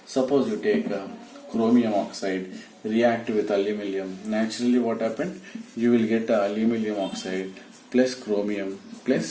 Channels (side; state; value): both; identical; correlation 1.00